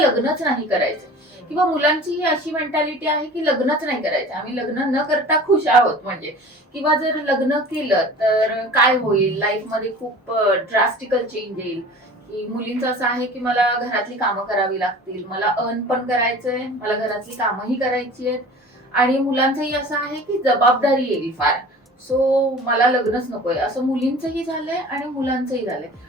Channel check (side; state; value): both; normal; correlation 0.41